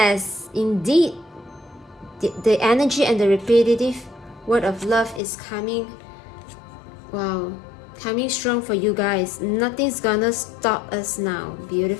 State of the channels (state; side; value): drops out; right; at 5.2 s